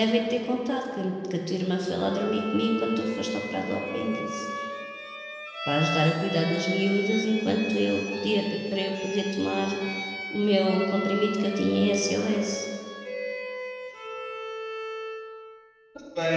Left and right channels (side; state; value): both; identical; correlation 1.00